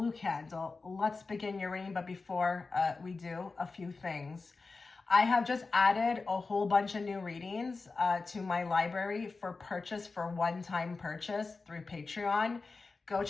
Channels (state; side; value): quieter; right; 4.0 dB